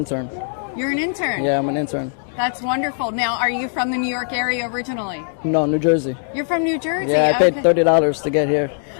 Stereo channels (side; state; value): right; silent; 63 dB below the other